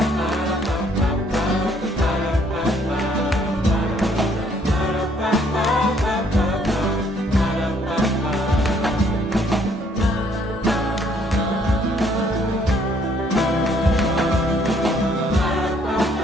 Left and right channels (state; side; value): normal; both; correlation 0.65